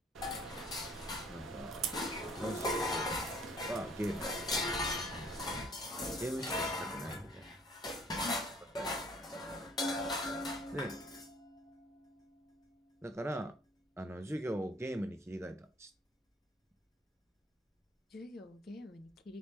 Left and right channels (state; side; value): normal; both; correlation 0.57